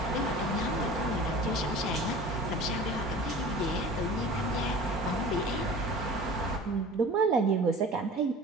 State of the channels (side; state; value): both; normal; correlation 0.40